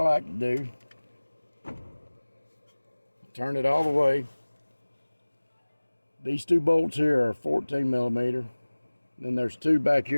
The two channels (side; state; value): both; inverted; correlation -1.00